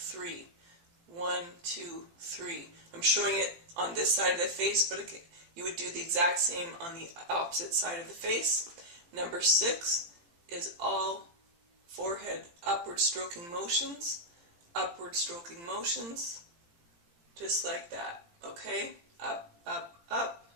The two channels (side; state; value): left; late; 18 ms